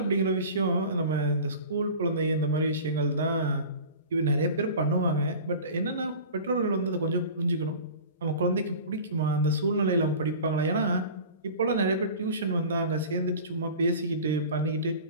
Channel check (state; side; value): inverted; both; correlation -0.38